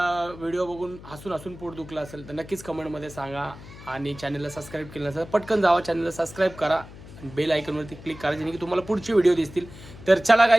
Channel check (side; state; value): left; noise; hum, 17 dB below the sound